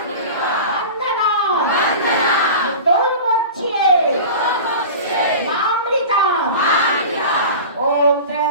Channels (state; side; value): inverted; both; correlation -0.34